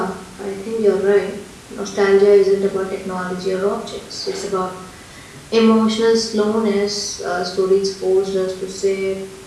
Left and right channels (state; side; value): identical; both; correlation 1.00